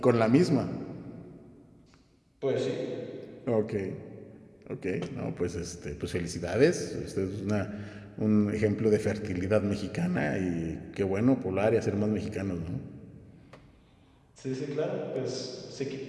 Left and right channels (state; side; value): identical; both; correlation 1.00